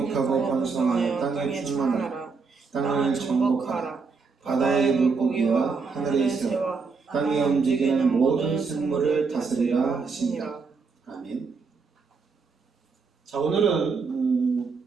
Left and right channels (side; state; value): left; quieter; 4.8 dB